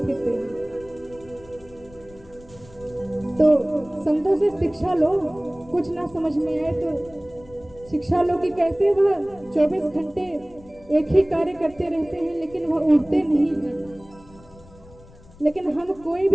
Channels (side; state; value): left; noise; rumble, 23 dB below the sound